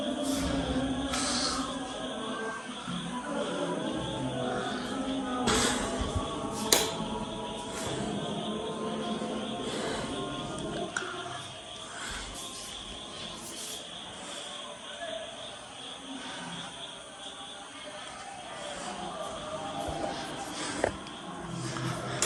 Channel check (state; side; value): identical; both; correlation 1.00